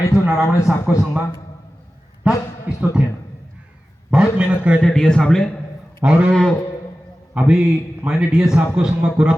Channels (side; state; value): both; normal; correlation 0.95